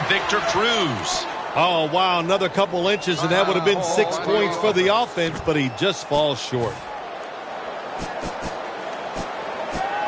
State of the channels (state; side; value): identical; both; correlation 1.00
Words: Victor Cruz. Oh, wow, another couple inches, and that would have been 6 points for the offense, but he just falls short.